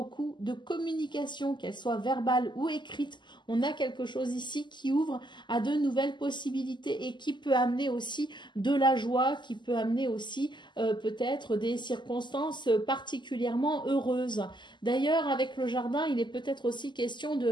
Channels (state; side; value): late; right; 0.22 ms